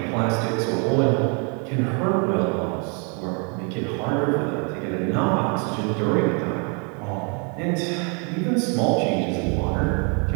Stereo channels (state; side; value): quieter; left; 36.3 dB